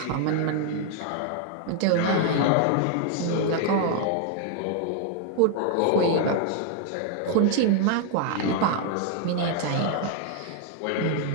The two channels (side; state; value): both; different; correlation 0.00